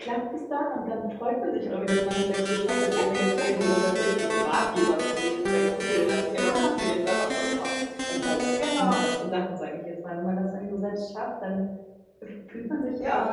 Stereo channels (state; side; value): identical; both; correlation 1.00